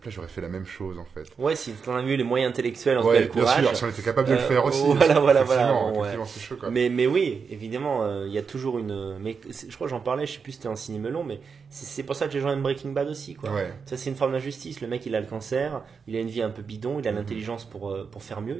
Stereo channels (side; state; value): left; quieter; 5.7 dB